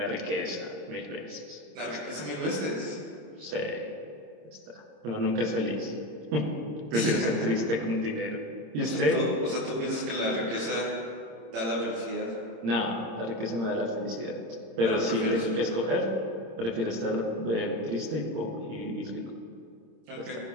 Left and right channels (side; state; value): left; late; 26 ms